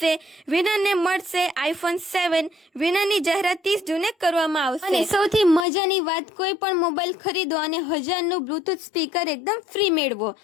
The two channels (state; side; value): drops out; right; at 5.7 s